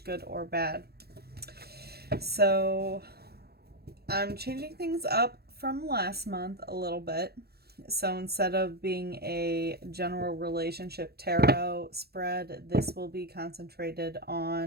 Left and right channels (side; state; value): left; late; 0.46 ms